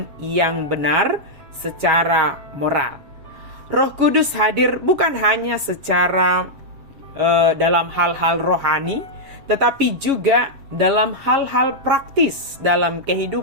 yang benar secara moral. Roh Kudus hadir bukan hanya secara dalam hal-hal rohani, tetapi juga dalam hal-hal praktis dalam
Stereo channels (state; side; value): late; left; 7.4 ms